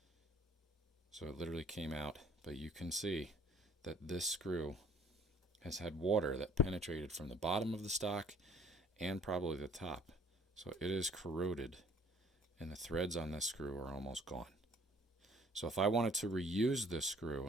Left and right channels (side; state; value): both; normal; correlation 0.57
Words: So it literally came out, but you can see that this screw has had water that penetrated from the bottom of the stock and probably the top. So it is corroded, and the threads on this screw are almost gone. So if I wanted to reuse this screw,